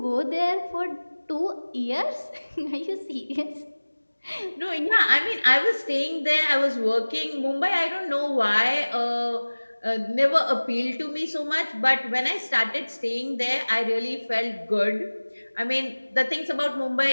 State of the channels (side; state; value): both; inverted; correlation -1.00